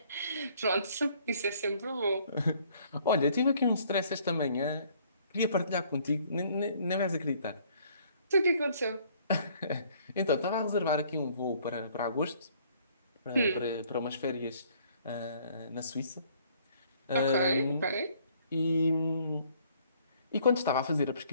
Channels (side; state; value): both; inverted; correlation -0.61